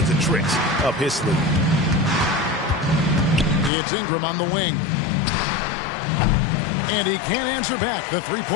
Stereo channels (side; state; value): right; drops out; at 3.7 s